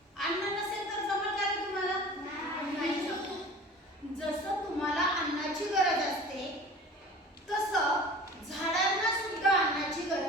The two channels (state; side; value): normal; both; correlation 0.41